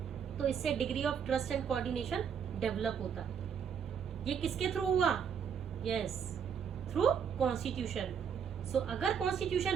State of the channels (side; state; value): left; quieter; 7.4 dB